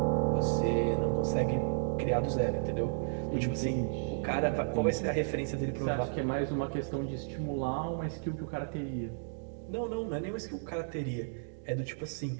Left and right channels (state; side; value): silent; left; digital silence